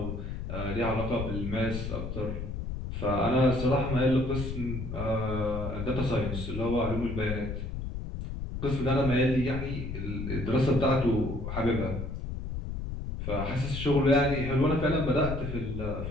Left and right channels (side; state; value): left; noise; rumble, 5 dB below the sound